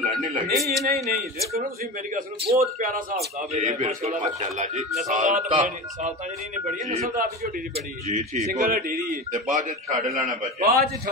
ਨਹੀਂ ਲੱਗੇ ਨਹੀਂ ਦੇਖੋ ਨਾ ਤੁਸੀਂ ਮੇਰੀ ਗੱਲ ਸੁਣੋ ਬਹੁਤ ਪਿਆਰਾ ਹਿਸਾਬ ਕਿਤਾਬ ਹੈ ਮਾਸ਼ਾਅੱਲਾ ਜੀ। ਸਾਲਤਾ ਜਿਹੜੀ ਨੇ ਬੜੀ ਨਸਲਦਾਰ ਦੀ ਝੋਟੀ ਦੀ ਬੜੀ ਜੀ ਠੀਕ ਸਿੰਗਲ ਢੇਰੀ ਤੇ ਬਾਅਦ ਚ ਛੱਡ ਲੈਣਾ ਬੱਚੇ ਬਾਅਦ ਚ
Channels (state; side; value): normal; both; correlation 0.27